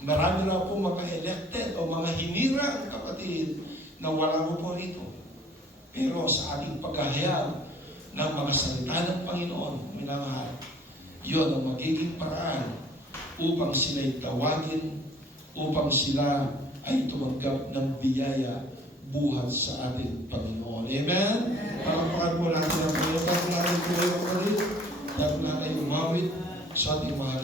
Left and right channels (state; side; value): normal; both; correlation 0.54